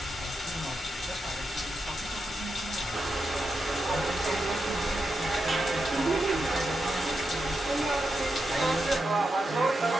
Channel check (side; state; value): both; normal; correlation 0.87